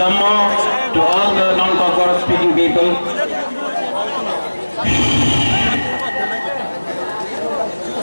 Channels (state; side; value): inverted; both; correlation -1.00